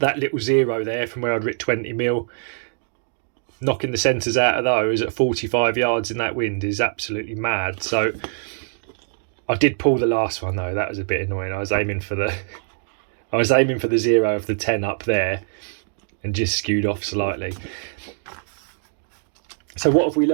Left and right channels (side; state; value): left; silent; digital silence